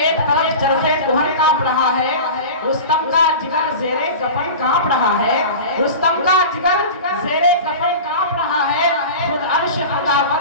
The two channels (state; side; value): inverted; both; correlation -0.32